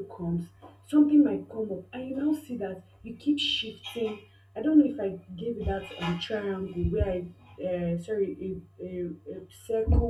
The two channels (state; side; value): identical; both; correlation 1.00